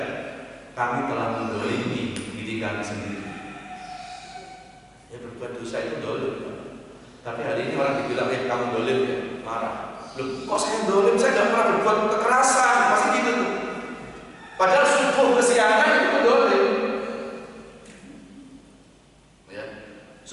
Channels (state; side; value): identical; both; correlation 1.00